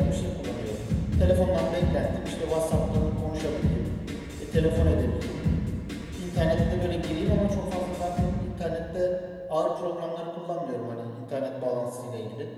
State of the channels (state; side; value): identical; both; correlation 1.00